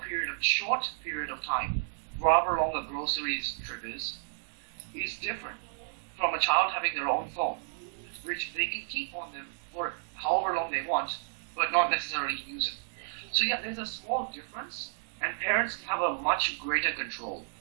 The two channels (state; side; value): silent; left; digital silence